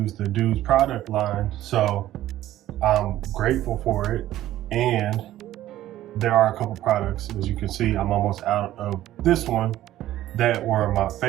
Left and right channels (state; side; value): quieter; left; 13.8 dB